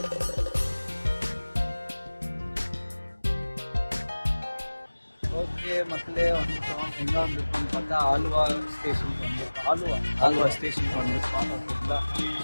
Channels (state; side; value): inverted; both; correlation -1.00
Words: ஓகே மக்களே, வந்துட்டோம். எங்கே வந்துருக்கோம்னு பார்த்தா ஆலுவா ஸ்டேஷனுக்கு வந்துருக்கோம். ஆலுவா ஸ்டேஷனுக்கு வந்துருக்கோம். ஓகேங்களா,